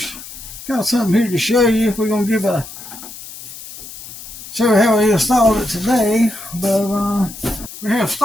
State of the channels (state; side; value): noise; left; hiss, 14 dB below the sound